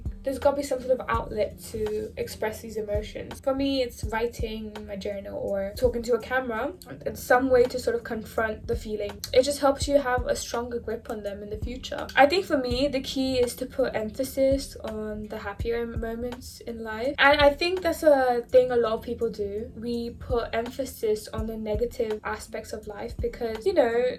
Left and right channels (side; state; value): both; identical; correlation 1.00